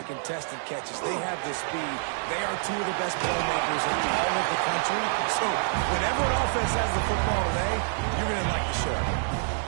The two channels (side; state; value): left; silent; digital silence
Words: contested catches. They have the speed. They are two of the best playmakers in all of the country. So whenever an offense has the football today, you're going to like the show.